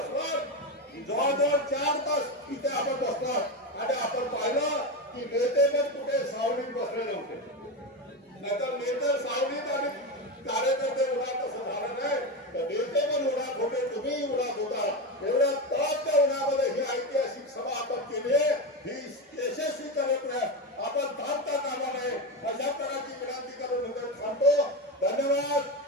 जवळजवळ 4 तास इथे आपण बसणार आणि आपण पाहिलं की नेते पण कुठे सावलीत बसलेले होते, नाहीतर नेते सावलीत आणि कार्यकर्ते उन्हात तसं झालं नाही, तर नेते पण उन्हात होते, तुम्ही उन्हात होता। एवढ्या तापच्या उन्हामध्ये ही ऐतिहासिक सभा आपण केली आहे, ही यशस्वी करत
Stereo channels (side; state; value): both; normal; correlation 0.16